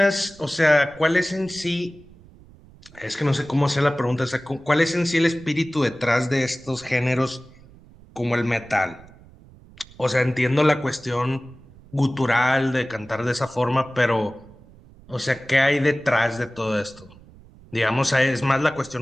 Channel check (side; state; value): right; noise; rumble, 23 dB below the sound